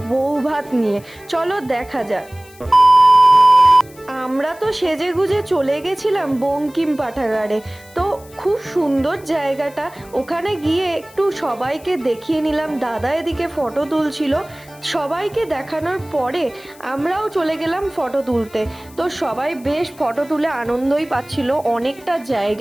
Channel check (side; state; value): left; noise; hiss, 24 dB below the sound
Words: বউ ভাত নিয়ে। চলো দেখা যাক। আমরা তো সেজে গুজে চলে গেছিলাম বঙ্কিম পাঠাগারে। তো খুব সুন্দর জায়গাটা, ওখানে গিয়ে একটু সবাইকে দেখিয়ে নিলাম। দাদা এদিকে ফটো তুলছিল, সবাইকে দেখানোর পরে আমরাও চলে গেলাম ফটো তুলতে। তো সবাই বেশ ফটো তুলে আনন্দই পাচ্ছিল, অনেকটা